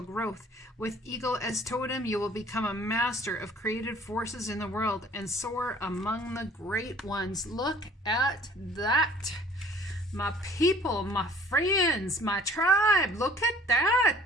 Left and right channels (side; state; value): both; normal; correlation 0.53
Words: growth. With Eagle as totem, you will become a master of creative forces in the world and soar among the great ones. Look at that. My people, my friends, my tribe, look at